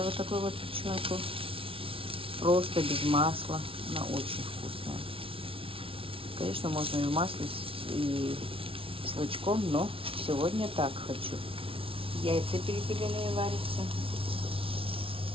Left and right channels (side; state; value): left; late; 0.26 ms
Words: вот такую вот печенку. Просто без масла. Она очень вкусная. Конечно, можно и в масле, и с лучком, но сегодня так хочу. Яйца перепелиные варятся.